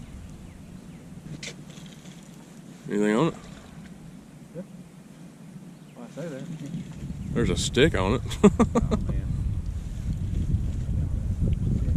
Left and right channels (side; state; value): both; identical; correlation 1.00